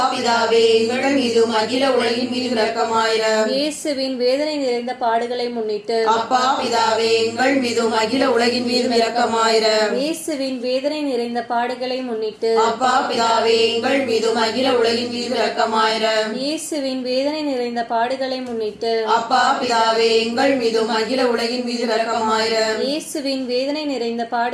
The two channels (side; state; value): both; identical; correlation 1.00